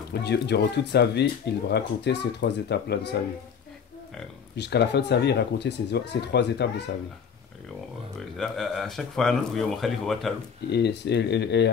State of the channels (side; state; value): right; quieter; 6.8 dB